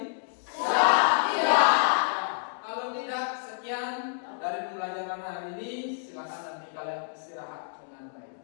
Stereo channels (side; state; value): right; silent; digital silence